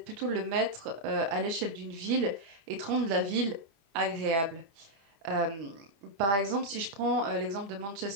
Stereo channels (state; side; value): late; left; 25 ms